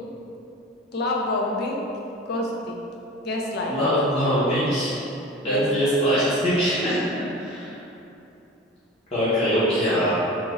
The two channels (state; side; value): normal; both; correlation 0.35